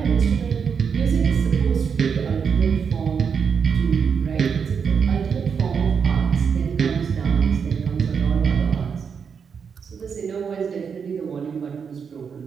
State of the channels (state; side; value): quieter; left; 6.5 dB